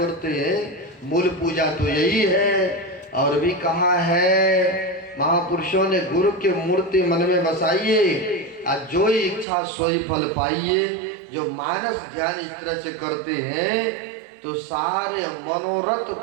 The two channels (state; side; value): drops out; left; at 9.5 s